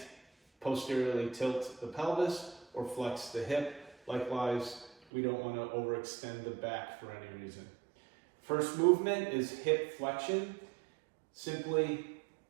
posteriorly tilt the pelvis or flex the hip. Likewise, we don't want to overextend the back for any reason. First movement is hip flexion. Simply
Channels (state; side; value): drops out; left; at 5.0 s